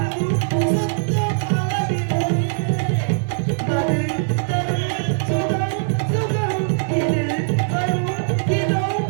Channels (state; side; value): silent; left; digital silence